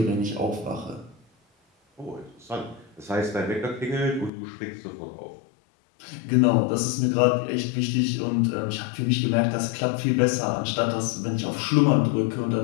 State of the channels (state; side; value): drops out; right; at 4.3 s